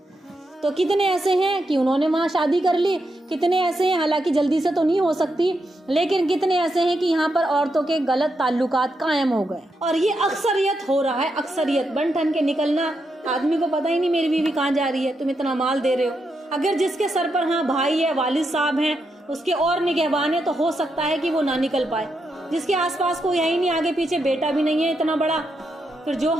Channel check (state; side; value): normal; both; correlation 0.83